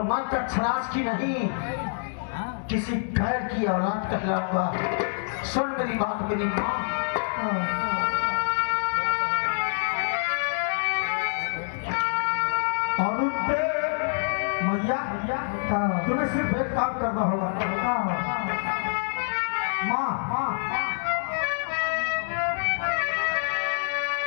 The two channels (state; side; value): silent; right; digital silence